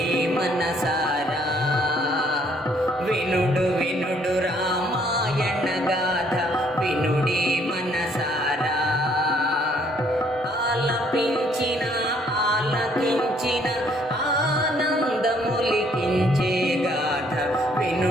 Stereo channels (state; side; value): normal; both; correlation 0.65